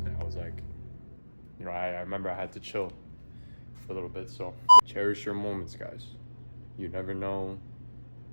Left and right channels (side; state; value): both; inverted; correlation -1.00